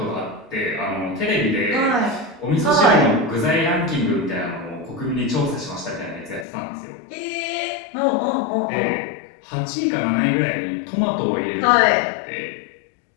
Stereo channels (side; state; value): right; drops out; at 6.5 s